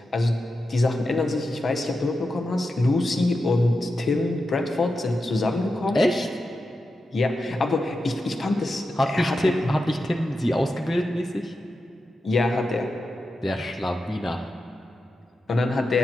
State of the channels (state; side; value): normal; both; correlation 0.89